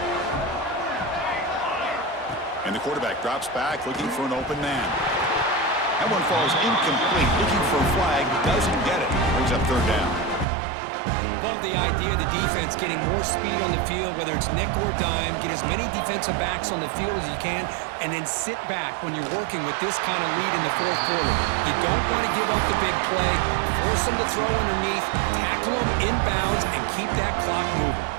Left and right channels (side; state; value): left; drops out; at 10.5 s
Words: And the quarterback drops back looking for an open man. That one falls incomplete, looking for a flag, doesn't get it. Brings up third down. Love the idea of the defense getting more speed on the field, whether it's nickel or dime, get as many defensive backs on the field as you can, and then sit back when you're working with this kind of lead in the fourth quarter. You don't want to give up the big play, force them to throw underneath, tackle them inbounds, and keep that clock moving.